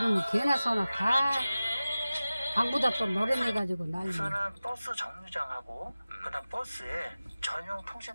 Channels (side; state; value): both; inverted; correlation -0.96